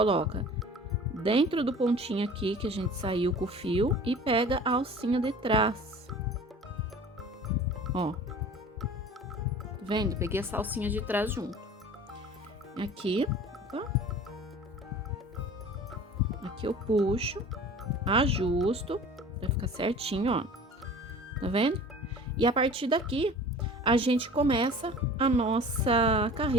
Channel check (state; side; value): normal; both; correlation 0.42